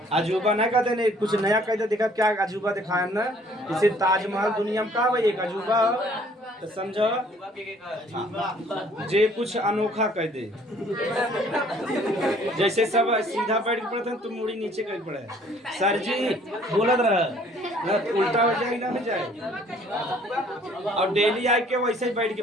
अजूबा ना कहते नहीं, कुछ नया कहते देखा क्या अजूबा दिखाया ना। जैसे ताजमहल दुनिया में का भाई एक अजूबा, तो समझो जे कुछ अनोखा कह दे। जैसे सब सीधा बैठ के पढ़ते हैं, तुम मुड़ी नीचे कर पड़े सर जी बोलत रह, उल्टा हो जाए ना हो जाए। और डेली आके वैसे ही बैठ के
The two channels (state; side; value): normal; both; correlation 0.58